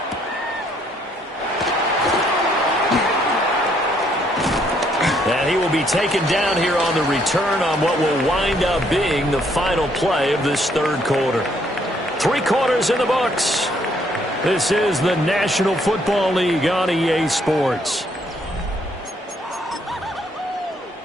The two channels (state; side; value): normal; both; correlation 0.69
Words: And he will be taken down here on the return on what will wind up being the final play of this third quarter. 3 quarters in the books. This is the National Football League on EA Sports.